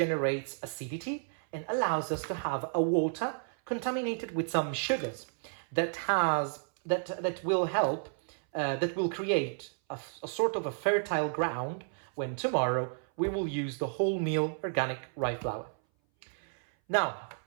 acidity and allows us to have a water contaminated with some sugars that will create a sort of a fertile ground when tomorrow we will use the wholemeal organic rye flour. Now,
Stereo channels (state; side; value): silent; left; 56 dB below the other